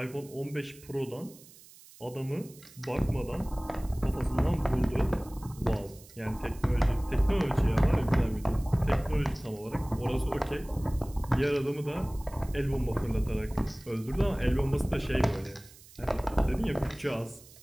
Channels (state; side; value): noise; right; hiss, 22 dB below the sound